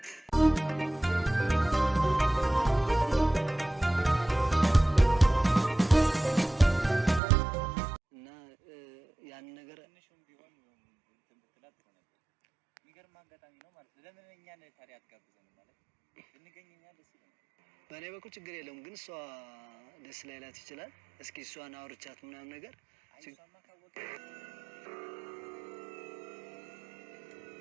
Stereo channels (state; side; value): drops out; left; at 7.2 s